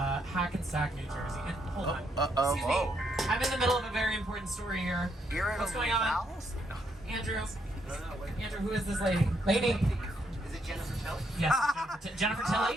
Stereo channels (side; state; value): both; normal; correlation 0.75